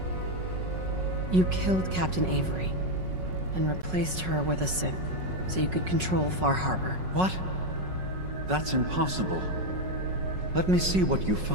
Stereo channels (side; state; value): left; late; 5.4 ms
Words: You killed Captain Avery and replaced her with a synth so you could control Far Harbor. What? That's impossible. Let me see what you